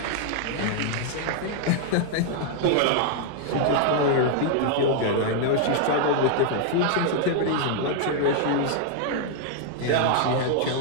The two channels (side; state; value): both; different; correlation -0.01